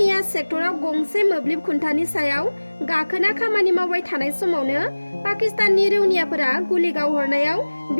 सेक्टराव गंसे मोब्लिब खुन्थानि सायाव गाखोना खामानि मावबाय थानाय समावनो पाकिस्ताननि रौनियाफोरा गुलि गावहरनायाव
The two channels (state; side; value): inverted; both; correlation -1.00